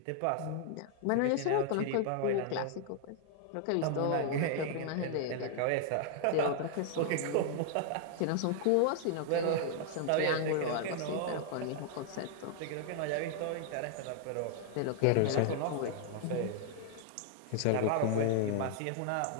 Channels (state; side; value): different; both; correlation 0.00